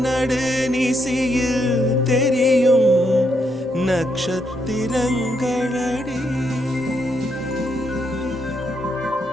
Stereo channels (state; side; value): noise; right; rumble, 27 dB below the sound